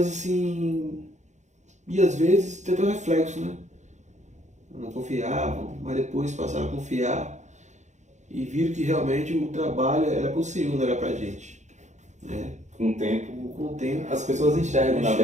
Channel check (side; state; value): left; late; 0.34 ms